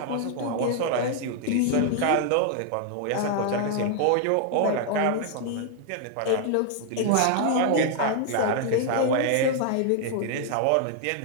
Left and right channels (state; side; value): different; both; correlation 0.00